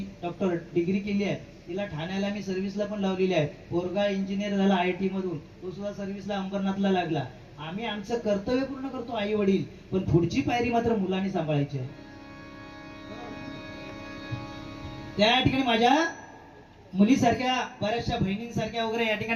डॉक्टर डिग्री केली आहे. तिला ठाण्याला मी सर्व्हिसला पण लावलेली आहे. पोरगा इंजिनियर झाला आयटी मधून, तो सुद्धा सर्व्हिसला अंबरनाथला लागला. आम्ही आमचं कर्तव्य पूर्ण करतो आई वडील, पण पुढची पायरी मात्र मुलांनी सांभाळायची आहे. त्या ठिकाणी माझ्या मुलीसारख्या बऱ्याचशा बहिणींसारख्या वगैरे या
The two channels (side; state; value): both; identical; correlation 1.00